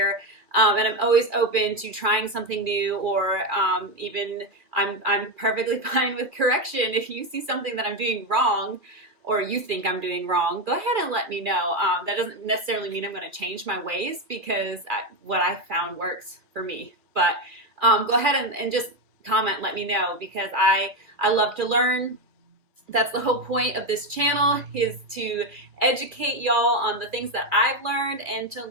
And I'm always open to trying something new, or even I'm perfectly fine with correction. If you see something that I'm doing wrong or you think I'm doing wrong, go ahead and let me know. That doesn't necessarily mean I'm going to change my ways because what I found works for me. But go ahead and just comment, let me know, because I love to learn. That's the whole point of this channel, is to educate y'all on the things that I've learned and to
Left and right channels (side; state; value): left; late; 2.5 ms